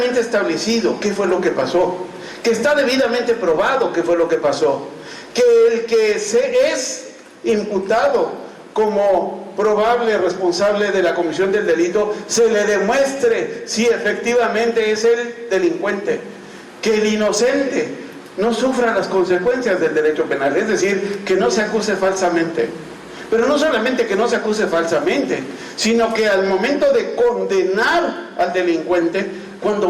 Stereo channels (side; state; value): both; identical; correlation 1.00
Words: establecido qué fue lo que pasó, que está debidamente probado qué fue lo que pasó, que el que se es imputado como probable responsable de la comisión del delito se le demuestre si efectivamente es el delincuente, que el inocente no sufra las consecuencias del derecho penal, es decir, que no se acuse falsamente. Pero no solamente que no se acuse falsamente, sino que al momento de condenar al delincuente cuando